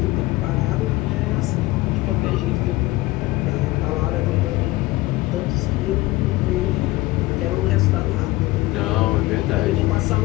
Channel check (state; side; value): quieter; right; 19.3 dB